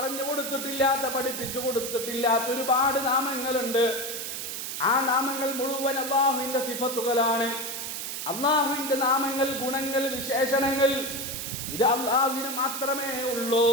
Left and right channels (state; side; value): noise; right; hiss, 5 dB below the sound